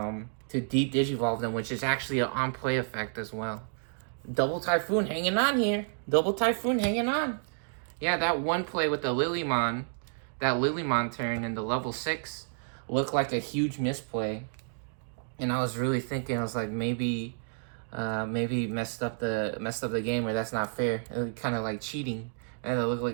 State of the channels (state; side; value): silent; left; digital silence